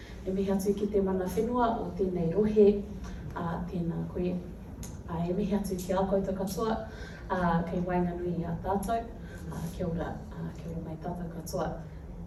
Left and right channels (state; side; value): identical; both; correlation 1.00